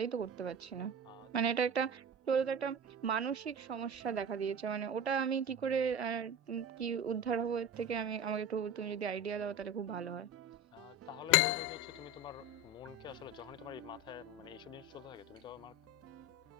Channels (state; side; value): normal; both; correlation 0.30